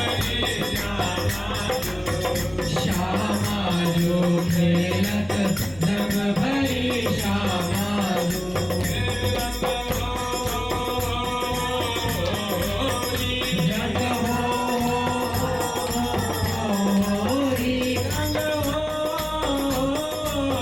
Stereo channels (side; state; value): right; noise; rumble, 20 dB below the sound